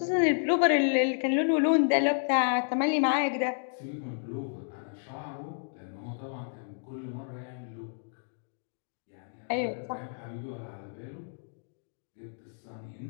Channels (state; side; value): silent; right; digital silence